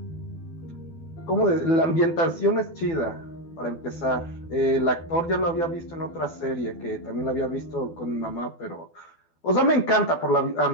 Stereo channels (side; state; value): right; late; 12 ms